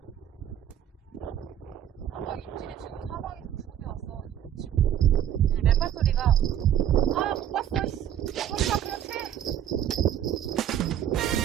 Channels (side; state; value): left; quieter; 10.3 dB